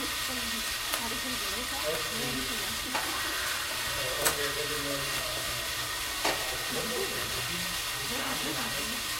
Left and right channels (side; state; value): both; identical; correlation 1.00